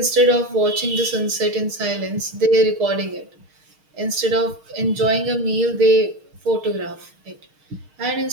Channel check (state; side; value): late; left; 6.4 ms